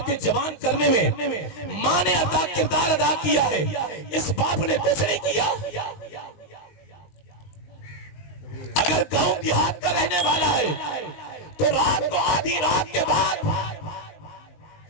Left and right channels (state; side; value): late; right; 19 ms